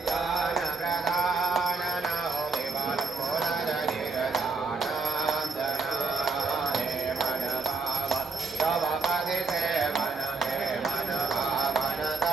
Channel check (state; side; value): quieter; left; 4.0 dB